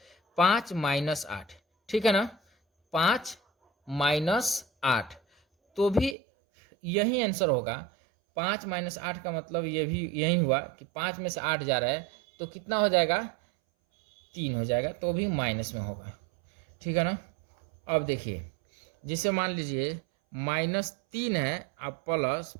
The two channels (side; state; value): left; drops out; at 6.2 s